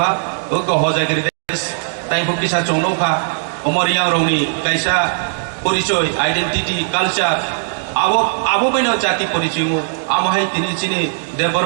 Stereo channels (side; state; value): left; silent; digital silence